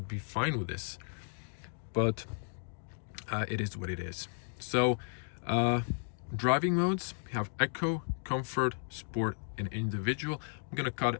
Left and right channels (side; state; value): right; silent; 55 dB below the other